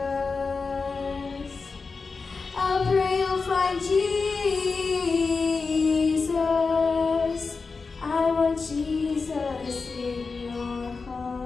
I'll pray you'll find Jesus. I want Jesus in your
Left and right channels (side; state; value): right; quieter; 4.5 dB